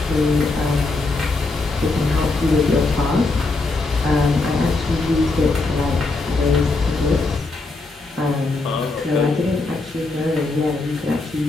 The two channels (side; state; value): right; quieter; 3.4 dB